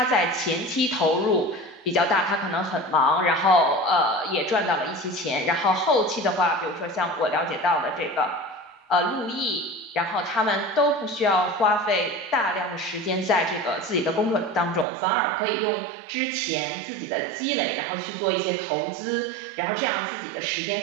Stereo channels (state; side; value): drops out; left; at 14.9 s